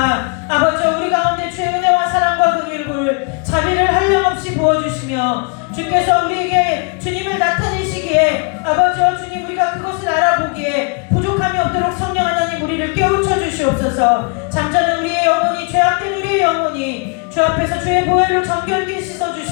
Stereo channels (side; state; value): right; quieter; 36.2 dB